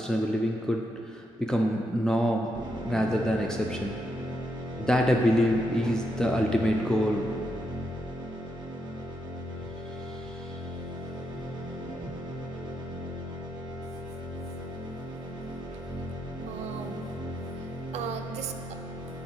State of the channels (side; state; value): both; normal; correlation 0.81